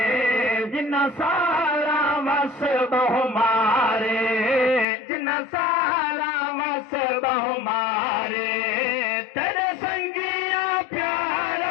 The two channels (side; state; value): right; drops out; at 4.9 s